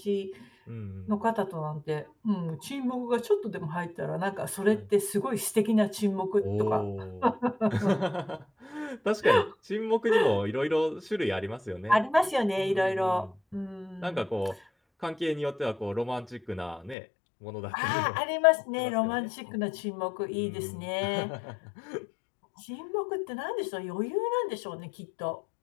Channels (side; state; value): right; drops out; at 16.9 s